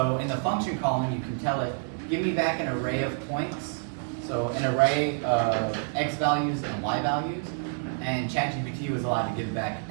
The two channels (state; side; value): silent; left; 59 dB below the other